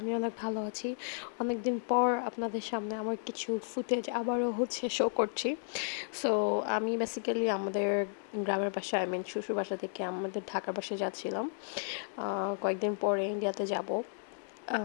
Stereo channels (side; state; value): right; silent; digital silence